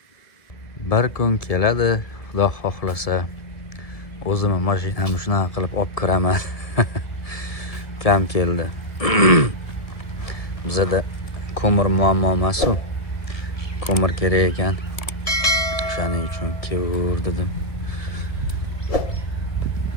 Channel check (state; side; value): late; right; 1.7 ms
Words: Bir kun keladi, Xudo xohlasa, o'zimni mashinamni shunaqa qilib olib kiraman. Ukam keldi. Bizda ko'mir muammo emas-ku. Ko'mir kerak ekan. O'shaning uchun kevur dedim.